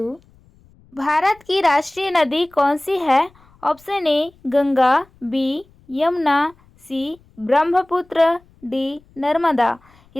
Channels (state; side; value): noise; left; rumble, 30 dB below the sound